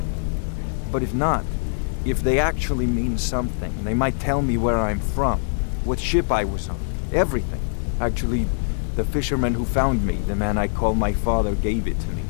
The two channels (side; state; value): right; silent; 57 dB below the other